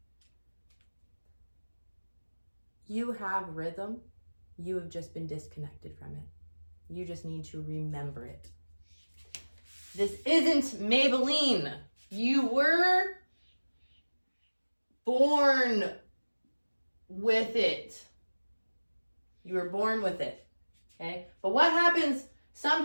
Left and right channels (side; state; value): both; inverted; correlation -1.00